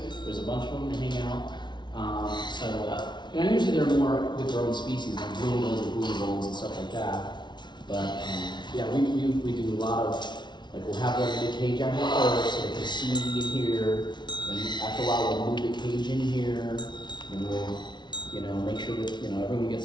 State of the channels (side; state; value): right; late; 0.21 ms